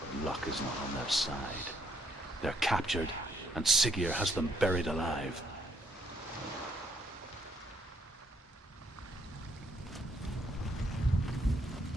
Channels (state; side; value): normal; both; correlation 0.70